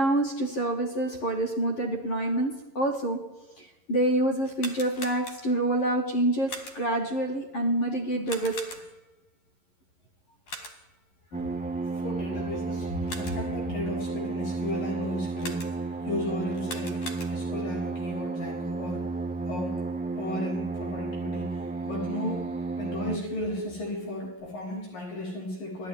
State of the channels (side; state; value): right; late; 11 ms